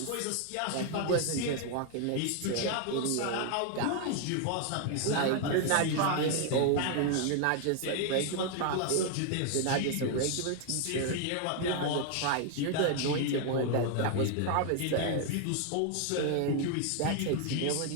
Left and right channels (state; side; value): different; both; correlation 0.00